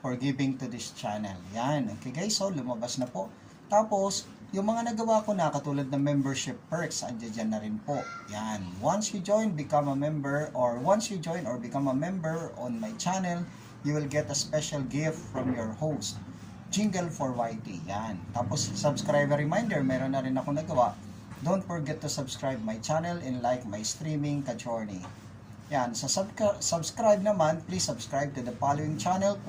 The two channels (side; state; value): both; identical; correlation 1.00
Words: for giving to this channel. Yan, okay guys, so lumabas na po. Tapos, yung mga nagawa ko na, katulad ng membership perks, andyan na rin po. Yan, once you join, become a member, or once you join or become a member on my channel, you will get a special gift from your host. Jingle for YT. Yan. Tapos, subscriber reminder, meron na rin ako nagawa. Don't forget to subscribe my channel and like my streaming ka-journey. Yan, sa subscribe naman, please subscribe to the following channel: